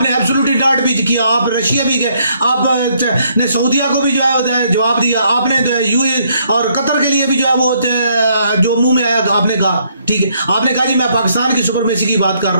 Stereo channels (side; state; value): both; inverted; correlation -0.70